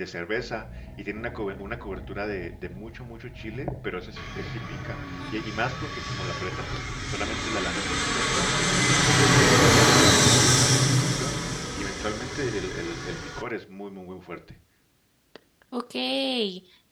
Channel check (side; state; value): both; identical; correlation 1.00